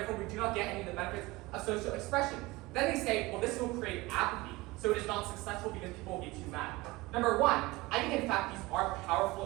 we do not get any of the benefits of social expression. Then they say, well, this will create apathy, so it is not successful because people will be too mad. Number one, I think in fact these are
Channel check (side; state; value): left; quieter; 21.4 dB